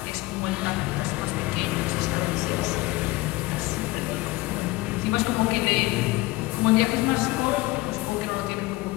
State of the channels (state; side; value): quieter; right; 20.6 dB